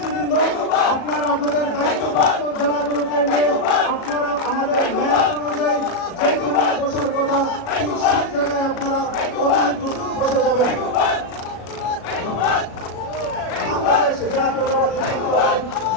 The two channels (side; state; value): right; late; 37 ms